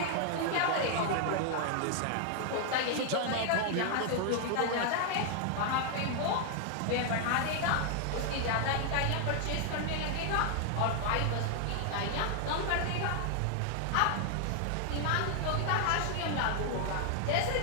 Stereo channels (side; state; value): both; different; correlation 0.00